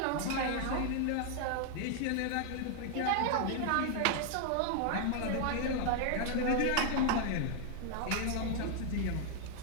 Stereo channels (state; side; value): different; both; correlation 0.00